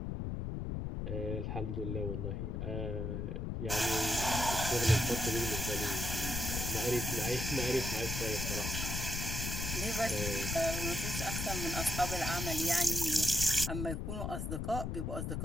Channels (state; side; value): noise; left; rumble, 2 dB below the sound